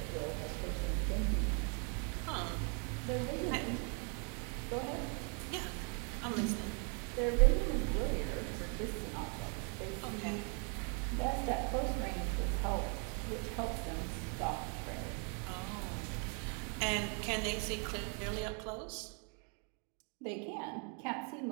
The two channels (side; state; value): left; quieter; 38.7 dB